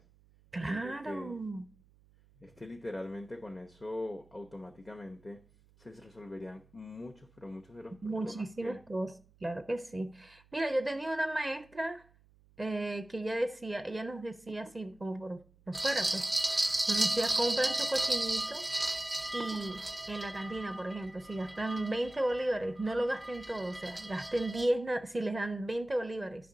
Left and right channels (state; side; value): noise; right; hum, 29 dB below the sound